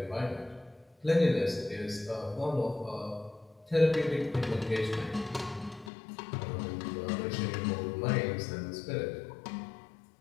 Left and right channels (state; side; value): drops out; right; at 5.9 s